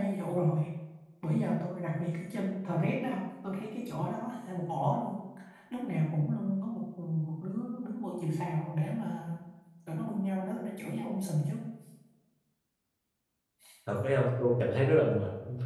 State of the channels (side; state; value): both; identical; correlation 1.00